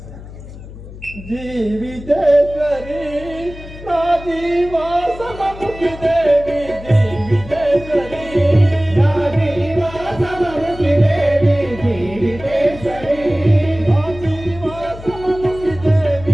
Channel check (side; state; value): left; noise; hum, 15 dB below the sound